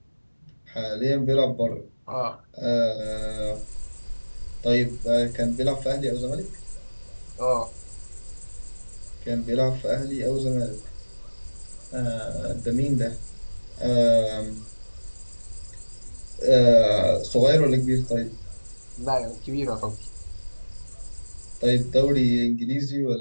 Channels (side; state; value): both; inverted; correlation -1.00